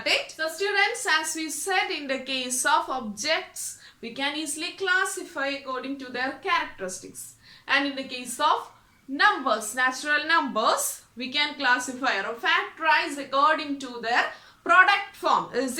it? So students, as we said, in the case of objects, we can easily classify according to their characteristics. And in the case of numbers, natural numbers, we can classify or factorize according to their product form. Is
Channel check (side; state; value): both; identical; correlation 1.00